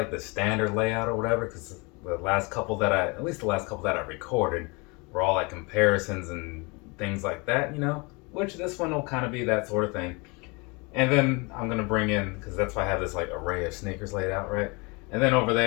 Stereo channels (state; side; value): quieter; right; 28.6 dB